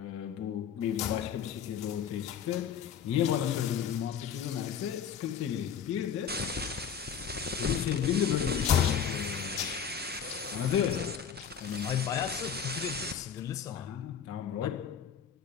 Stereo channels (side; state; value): right; quieter; 7.8 dB